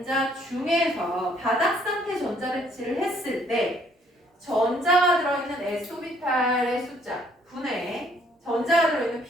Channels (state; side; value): normal; both; correlation 0.64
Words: 중에서 바닥 상태 전자배치를 했을 때 전자가 들어있는 S오비탈의 숫자 분의 전자가 들어있는